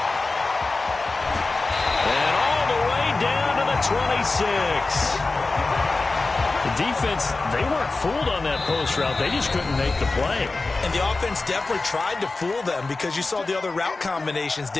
And all the way down to the 26. The defense, they weren't fooled on that post route. They just couldn't make the play. And the offense definitely tried to fool them because you saw the other route combinations,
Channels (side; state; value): right; quieter; 3.5 dB